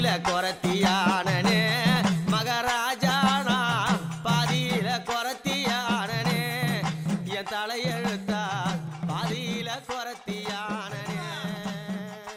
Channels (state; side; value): identical; both; correlation 1.00